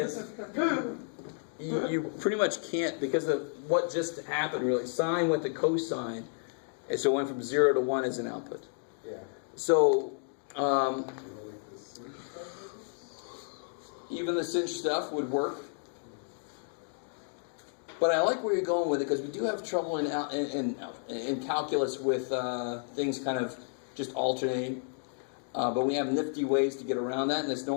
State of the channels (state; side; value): silent; right; 57 dB below the other